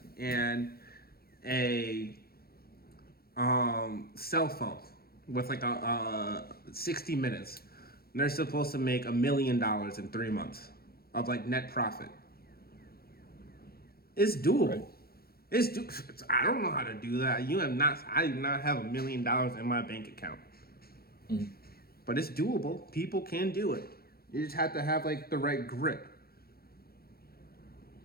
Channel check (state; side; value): late; right; 0.44 ms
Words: and a cell phone with like a 60 minutes, and they're supposed to make $1 million in 3 months of like net profit. It's doable. Right. I don't know how to do that. I do not have $1 million in my bank account. Mm-hmm. But it's doable. People can do it. You just have to have like the right grit.